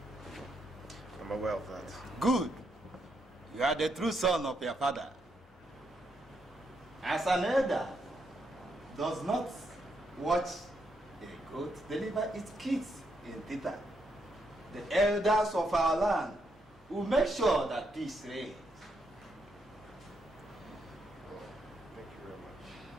I'm aware of that. Good. You are the true son of your father. As an elder does not watch a goat deliver its kids in theater, the elders of our land will make sure that peace reigns. Thank you very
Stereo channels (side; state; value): both; normal; correlation 0.78